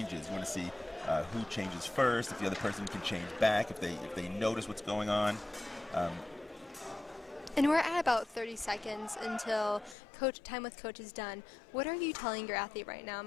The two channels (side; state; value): right; drops out; at 10.0 s